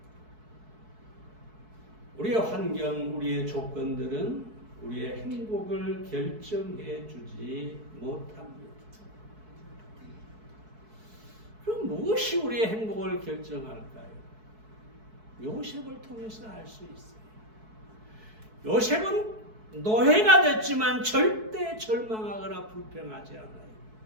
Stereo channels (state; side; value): late; left; 4.6 ms